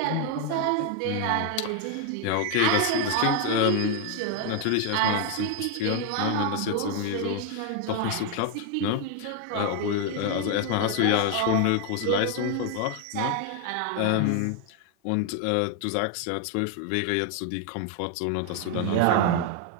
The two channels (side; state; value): both; different; correlation 0.01